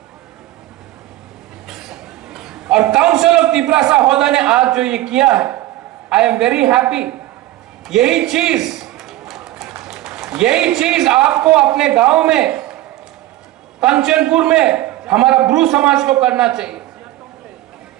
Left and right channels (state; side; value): quieter; left; 15.8 dB